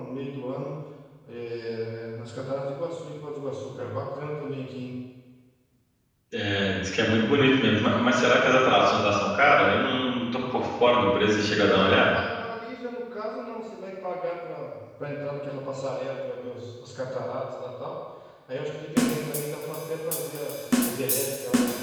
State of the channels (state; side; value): identical; both; correlation 1.00